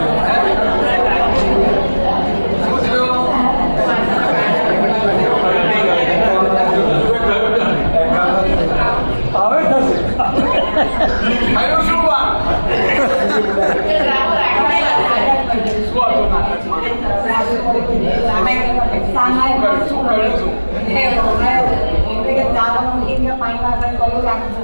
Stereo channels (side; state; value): both; inverted; correlation -1.00